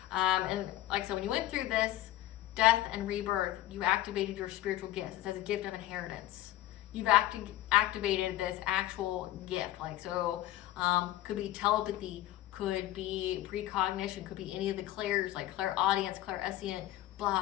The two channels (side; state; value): right; quieter; 14.7 dB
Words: And like I said, when you went through this death and rebirth, you activated your spiritual gifts. It says a gift of inheritance. You've activated this actual gift. Like, so could be telepathy, could be precognition, could be any of the clairs, like clairaudience, clairsentient,